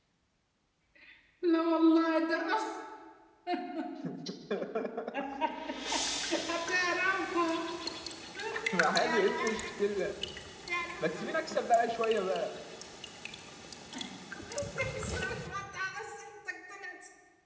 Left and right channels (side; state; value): both; identical; correlation 1.00